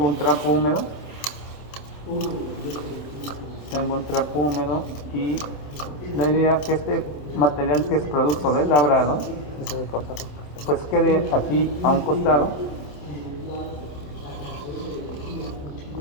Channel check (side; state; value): right; late; 27 ms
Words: un trapo húmedo. Y la idea es que este material que es producto del labrado, pues quede aquí a un costado.